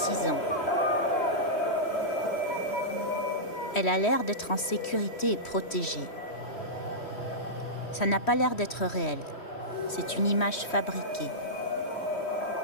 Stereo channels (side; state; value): right; late; 3.1 ms